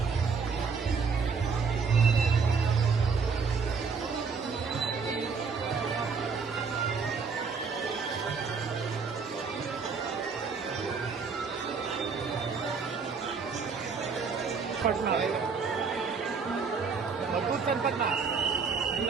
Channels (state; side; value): quieter; left; 5.3 dB